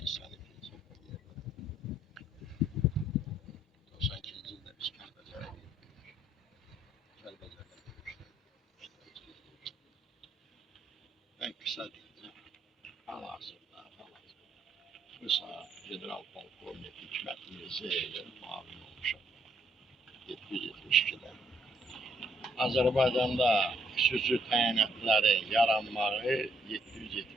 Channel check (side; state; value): both; normal; correlation 0.71